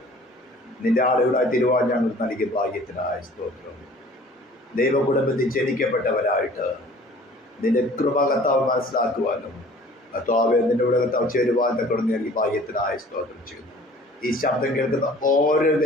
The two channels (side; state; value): both; normal; correlation 0.50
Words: നിന്റെ ആളുകളായി തിരുവാൻ ഞങ്ങൾ നൽകിയ ഭാഗ്യത്തിനായ സ്തോത്രം. ദൈവകുടുംബത്തിൽ ജനിക്കപ്പെട്ടവരായിട്ട് നിന്റെ കൃപ കർത്താവ് മനസ്സിലാക്കുവാനും കർത്താവെ നിന്റെ കൂടെ കർത്താവ് ചേരുവാൻ തക്കൊണ്ട് നൽകി ഭാഗ്യത്തിനായ സ്തോത്രം ചെയ്യുന്നു. ഈ ശബ്ദം കേൾക്കുന്ന ഓരോ